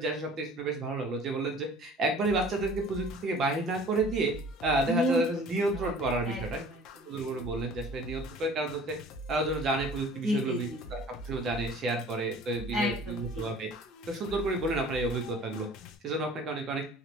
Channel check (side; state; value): both; normal; correlation 0.47